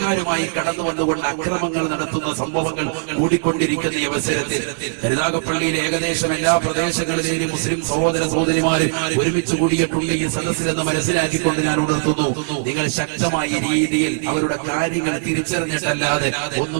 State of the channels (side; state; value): left; silent; digital silence